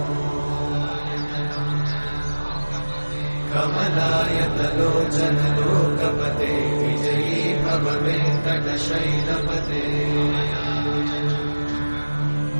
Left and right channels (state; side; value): inverted; both; correlation -1.00